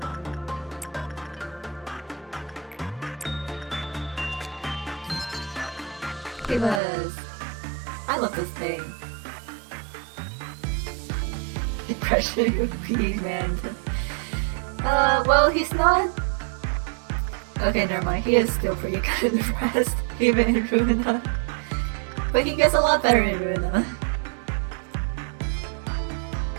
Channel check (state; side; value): drops out; left; at 6.8 s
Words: Give us. I love this thing. Depression Pete, man. Well, he's not. Okay, never mind. He is still pretty good in the rest, even in Ruina. But he gets a lot better in Ruina.